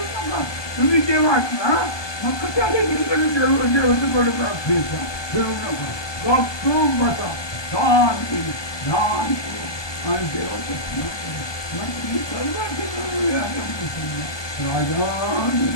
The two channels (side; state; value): right; late; 1.2 ms